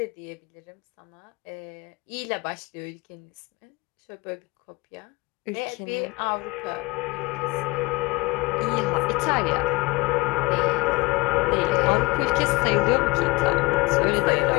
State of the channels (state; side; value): quieter; right; 23.9 dB